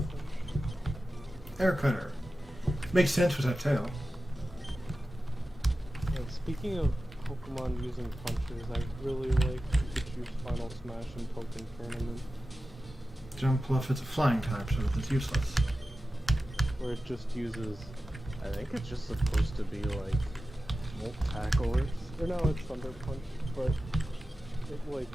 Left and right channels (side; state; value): both; normal; correlation 0.94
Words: Air cutter. Makes sense with that tail. And speaking of Pokemon using punches. I really like Pikachu's Final Smash and Pokken Tournament, Jumpluff is a flying type, so it's useless. where it just uses. I think it's just supposed to be like Volt Tackle or no, it's Thunder Punch, but it like